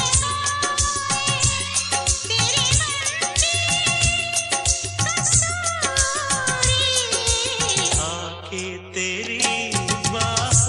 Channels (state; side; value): identical; both; correlation 1.00